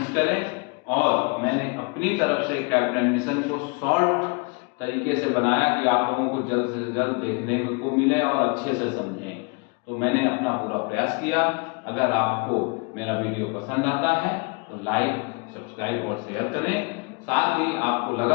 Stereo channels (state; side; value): quieter; right; 31.8 dB